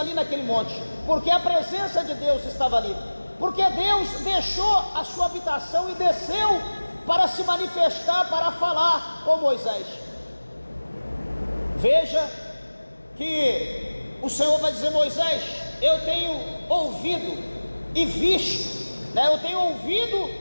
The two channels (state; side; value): inverted; both; correlation -1.00